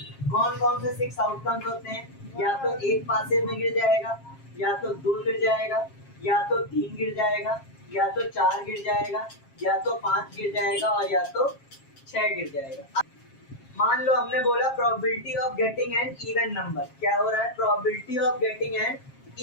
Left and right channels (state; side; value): late; right; 7.4 ms